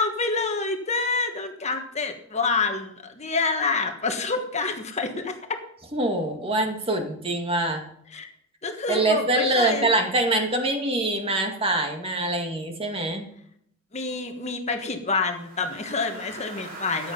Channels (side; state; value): both; normal; correlation 0.00